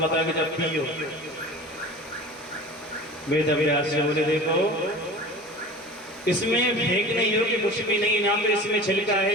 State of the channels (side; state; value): both; normal; correlation 0.38